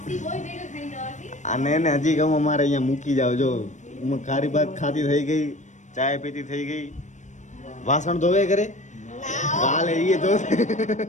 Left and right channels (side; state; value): right; late; 0.35 ms